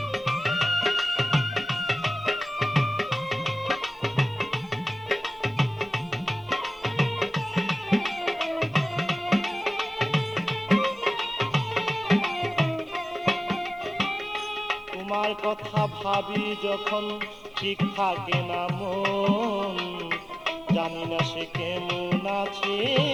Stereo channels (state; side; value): normal; both; correlation 0.96